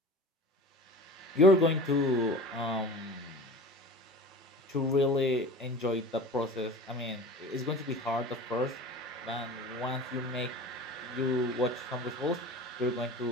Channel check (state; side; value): normal; both; correlation 0.37